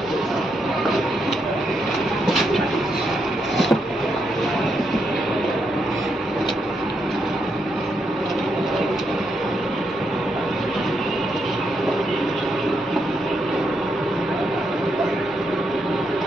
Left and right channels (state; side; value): normal; both; correlation 0.80